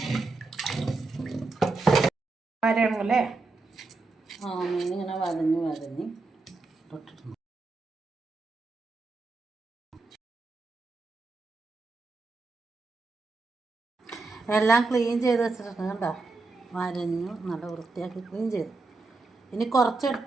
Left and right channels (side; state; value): left; quieter; 3.6 dB